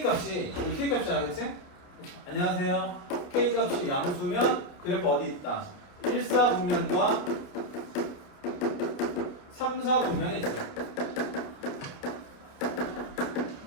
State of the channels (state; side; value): late; right; 29 ms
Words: 값이 여기 k 값이잖아, 그치? 안녕하세요. k 값이 양수면 그래프 어디 있다? 1, 4 분면과 3, 4 분면에 있어요.